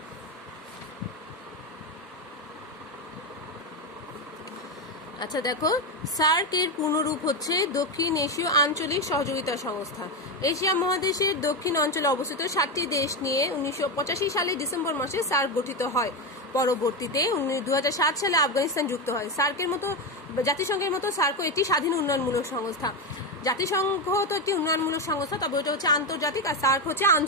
আচ্ছা দেখো, সার্ক এর পূর্ণরূপ হচ্ছে দক্ষিণ এশীয় আঞ্চলিক সহযোগিতা সংস্থা। এশিয়া মহাদেশের দক্ষিণ অঞ্চলে অবস্থিত 7টি দেশ নিয়ে 1985 সালে ডিসেম্বর মাসে সার্ক গঠিত হয়। পরবর্তীতে 2007 সালে আফগানিস্তান যুক্ত হয়। জাতিসংঘের মতো সার্কও একটি স্বাধীন উন্নয়নমূলক সংস্থা। জাতিসংঘ তো একটি উন্নয়নমূলক সংস্থা, তবে ওটা হচ্ছে আন্তর্জাতিক, আর সার্ক হচ্ছে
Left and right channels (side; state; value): both; normal; correlation 0.12